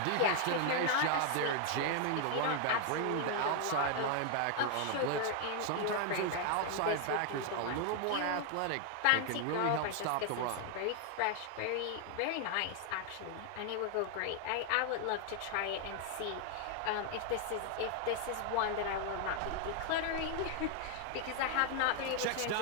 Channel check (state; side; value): different; both; correlation 0.00